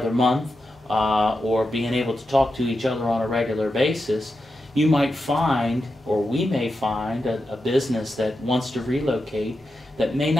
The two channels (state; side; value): normal; both; correlation 0.88